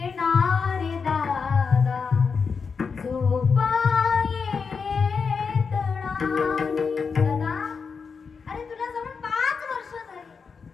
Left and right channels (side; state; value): right; quieter; 5.5 dB